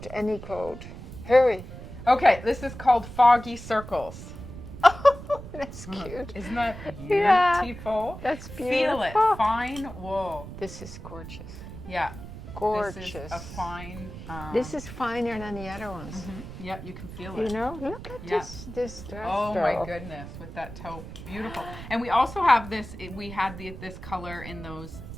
any coat. Hurry. Okay, this is called Foggy Circles. That's cute. Isn't that Yeah, beautiful? that's Feel beautiful. it. Fine wool. This is gorgeous. Yeah. Gorgeous. This is a fine. This is finer than the other ones. Yep, you can feel You it. know, look at this dress. Oh my goodness, with that taupe, beautiful. And we also have this. We had this color in those.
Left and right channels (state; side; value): noise; right; rumble, 12 dB below the sound